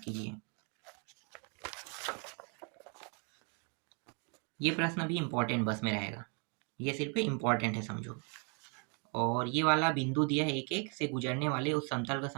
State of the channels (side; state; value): left; quieter; 36.8 dB